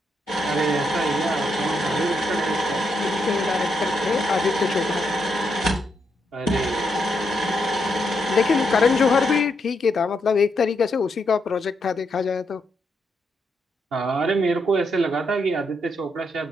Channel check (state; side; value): normal; both; correlation 0.80